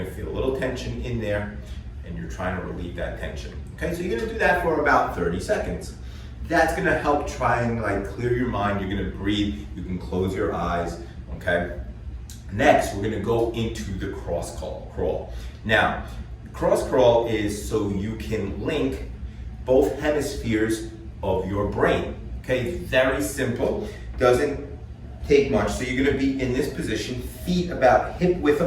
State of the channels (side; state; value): both; identical; correlation 1.00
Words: feel a little tension in there, and you're trying to relieve that tension. Okay, so you're gonna do that for about 30 seconds. That's gonna help try and like clear your mind. You're gonna breathe, you can close your eyes, okay? Next, we're gonna go into the cross crawl. Now, cross crawl is so you can link both hemispheres of your brain, Okay, very simple, doesn't take much. So you're gonna be in this position, feet about hip width